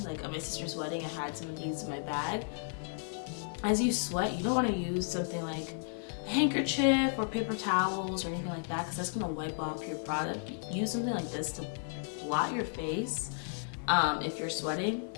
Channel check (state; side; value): silent; right; digital silence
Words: like at my sister's wedding, I had some of these in my bag. As you sweat, you don't want to use something like a handkerchief or paper towels or anything like that, because that's gonna wipe off your product. Use something like this to blot your face if you're sweating.